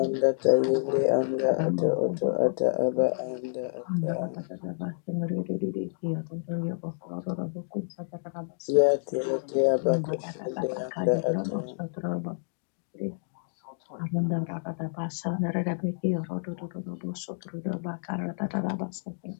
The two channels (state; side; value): silent; right; digital silence